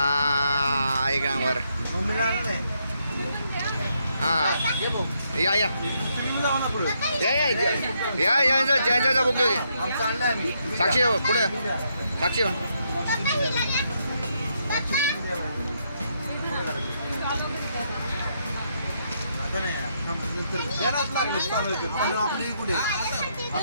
एक नंबर. हा या या जयंचा बुक घेऊ. साक्षी पुढे साक्षी.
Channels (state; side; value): inverted; both; correlation -0.77